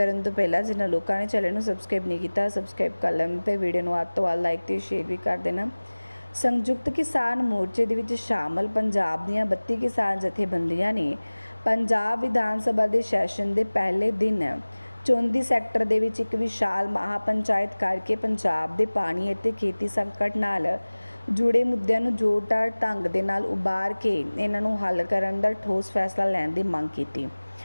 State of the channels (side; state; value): both; inverted; correlation -1.00